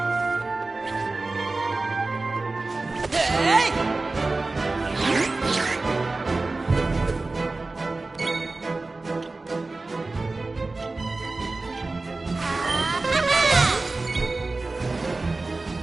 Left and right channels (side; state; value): left; quieter; 3.4 dB